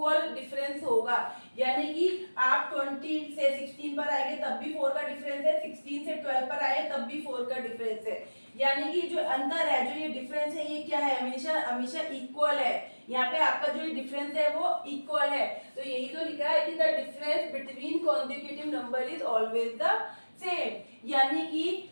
डिफरेंस होगा। यानी कि आप 20 से 16 पर आएंगे तब भी 4 का डिफरेंस है, 16 से 12 पर आए तब भी 4 का डिफरेंस है। यानी कि जो अंतर है, जो ये डिफरेंस है, ये क्या है? हमेशा इक्वल है। यहाँ पे आपका जो डिफरेंस है वो इक्वल है। तो यही तो लिखा है कि the difference between consecutive number is always the same. यानी कि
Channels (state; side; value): inverted; both; correlation -1.00